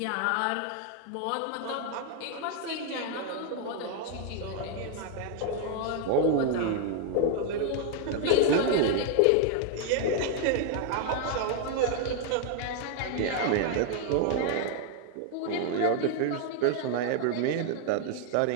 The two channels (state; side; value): different; both; correlation 0.00